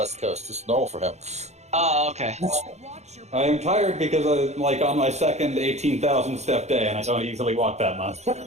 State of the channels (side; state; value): left; late; 0.32 ms